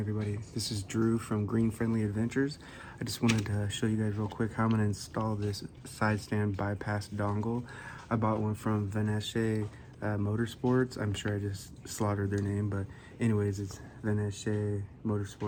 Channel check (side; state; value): both; identical; correlation 1.00